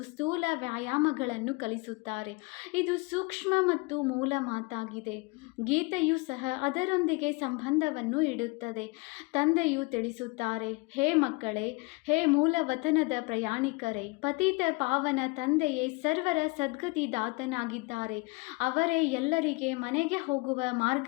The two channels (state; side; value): quieter; right; 26.6 dB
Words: ಸ್ಥೂಲ ವ್ಯಾಯಾಮಗಳನ್ನು ಕಲಿಸುತ್ತಾರೆ. ಇದು ಸೂಕ್ಷ್ಮ ಮತ್ತು ಮೂಲ ಮಾತಾಗಿದೆ. ಗೀತೆಯು ಸಹ ಅದರೊಂದಿಗೆ ಸಂಬಂಧವನ್ನು ಇಡುತ್ತದೆ. ತಂದೆಯು ತಿಳಿಸುತ್ತಾರೆ, ಹೇ ಮಕ್ಕಳೇ, ಹೇ ಮೂಲವತನದ ಪ್ರಯಾಣಿಕರೇ, ಪತಿತ ಪಾವನ ತಂದೆಯೇ ಸರ್ವರ ಸದ್ಗತಿದಾತನಾಗಿದ್ದಾರೆ. ಅವರೇ ಎಲ್ಲರಿಗೆ ಮನೆಗೆ ಹೋಗುವ